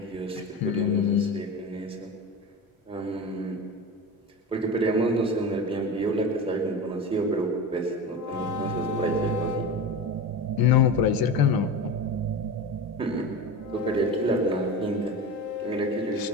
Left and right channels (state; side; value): normal; both; correlation 0.27